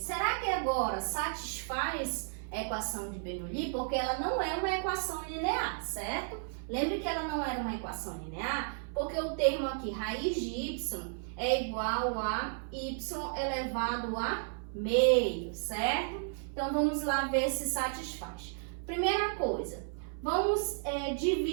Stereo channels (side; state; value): left; silent; 56 dB below the other